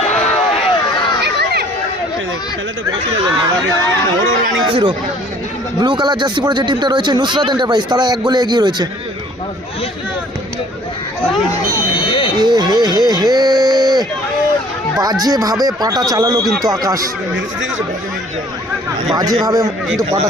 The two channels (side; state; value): both; normal; correlation 0.55